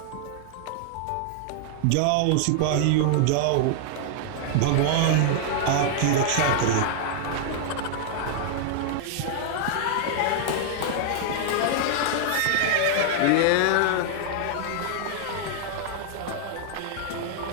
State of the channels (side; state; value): both; different; correlation -0.01